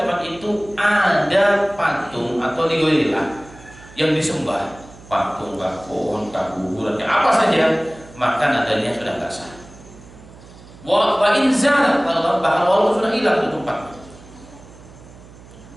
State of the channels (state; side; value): noise; right; hum, 21 dB below the sound